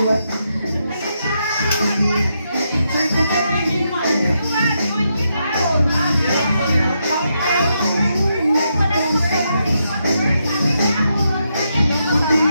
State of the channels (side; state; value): both; inverted; correlation -0.81